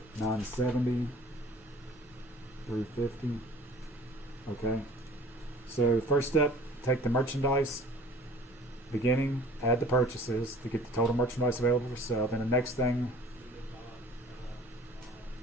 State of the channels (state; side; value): normal; both; correlation 0.48